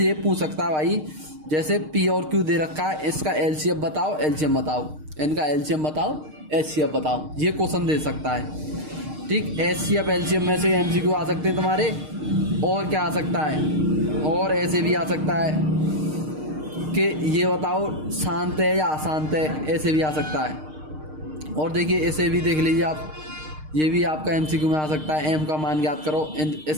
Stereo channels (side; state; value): left; late; 6.5 ms